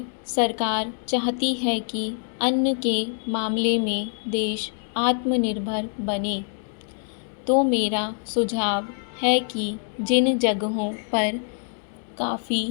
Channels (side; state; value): right; silent; 62 dB below the other